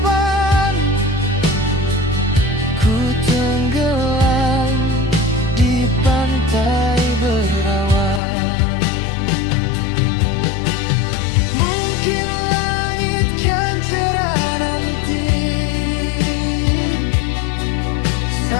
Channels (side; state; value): right; drops out; at 8.2 s